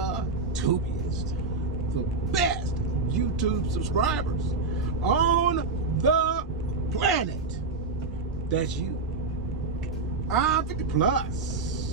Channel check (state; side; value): quieter; left; 3.9 dB